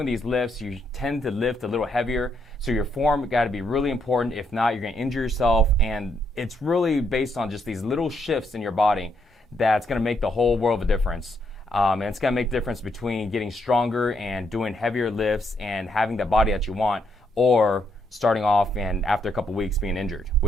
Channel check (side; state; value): both; normal; correlation 0.75